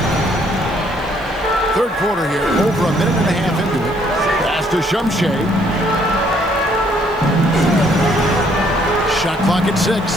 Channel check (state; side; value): noise; right; hiss, 28 dB below the sound